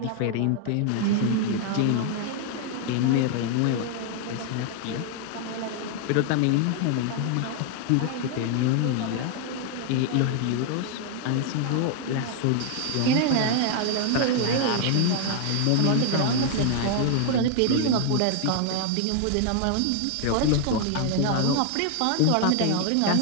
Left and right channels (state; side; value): different; both; correlation 0.00